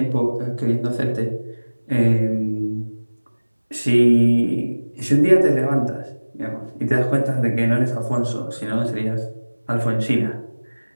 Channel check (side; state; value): both; inverted; correlation -1.00